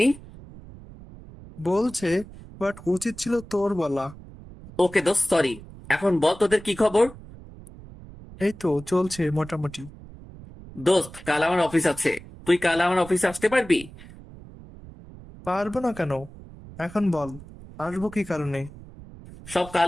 বলছে, বাট উচিত ছিল তোর বলা। ওকে দোস্ত, সরি। এখন বল তোদের কি খবর? এই তো চলছে মোটামুটি। দোস্ত, কাল আমার অফিস আছে, তুই কাল আমার অফিসে আসতে পারবি? পারবো না কেন? এখন বল, আসবো কি কারণে? সব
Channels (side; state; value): right; noise; rumble, 17 dB below the sound